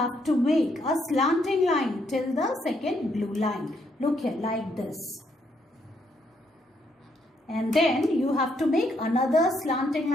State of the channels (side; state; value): both; normal; correlation 0.73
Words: to make a slanting line till the second blue line. Look here, like this. And then, you have to make another slanting